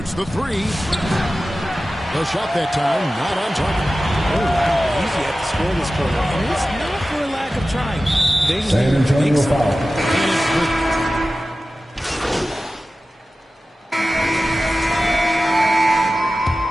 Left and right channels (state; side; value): normal; both; correlation 0.95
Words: the 3. The shot that time, not on target. Oh, wow. Easy at the score this quarter. And it's not for a lack of trying. They just San Antonio foul.